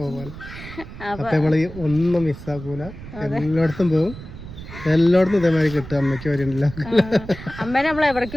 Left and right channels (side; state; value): right; noise; rumble, 13 dB below the sound